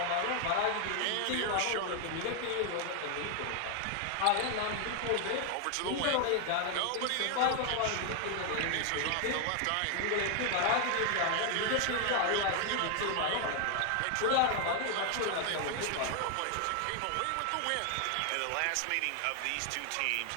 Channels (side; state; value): both; different; correlation 0.00